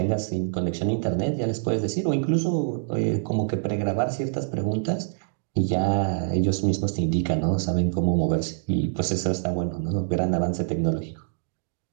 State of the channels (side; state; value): left; silent; digital silence